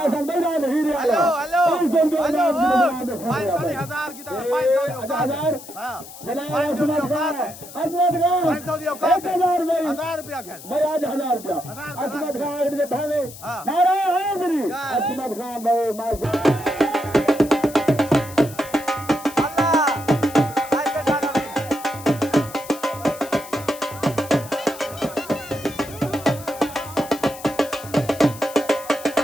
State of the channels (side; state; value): left; noise; hiss, 16 dB below the sound